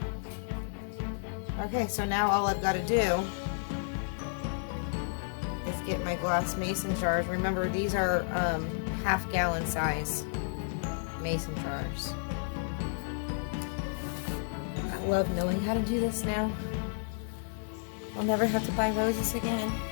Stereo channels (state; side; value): silent; right; digital silence